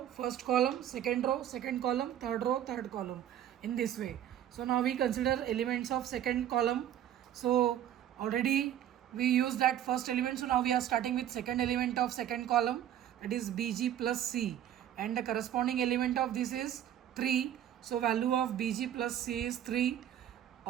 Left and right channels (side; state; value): left; quieter; 11.0 dB